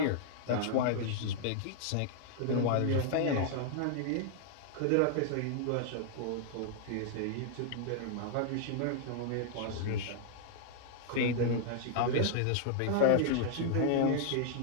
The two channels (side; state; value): both; different; correlation -0.01